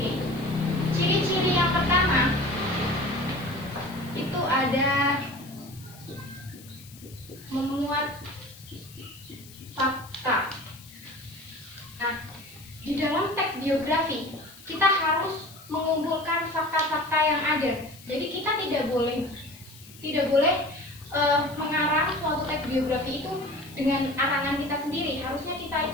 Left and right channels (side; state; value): left; noise; hiss, 20 dB below the sound